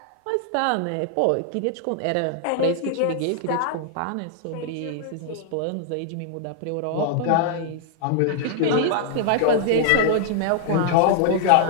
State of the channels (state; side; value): different; both; correlation -0.01